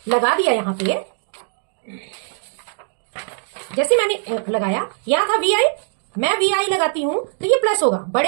लगा दिया यहां पे, जैसे मैंने लगाया, यहां था VI, मैं VI लगाती हूं तो ये प्लस होगा।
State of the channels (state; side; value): silent; left; digital silence